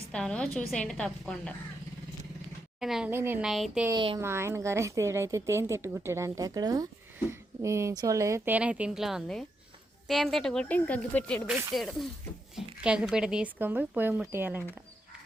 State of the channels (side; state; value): both; normal; correlation 0.82